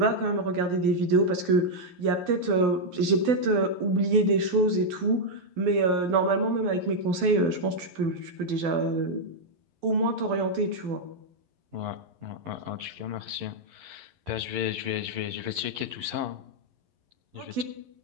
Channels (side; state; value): left; late; 12 ms